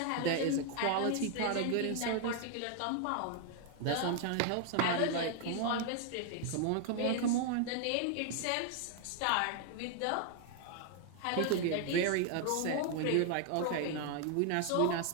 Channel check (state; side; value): different; both; correlation 0.00